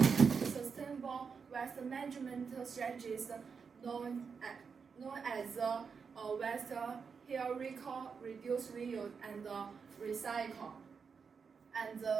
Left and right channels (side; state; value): left; quieter; 5.8 dB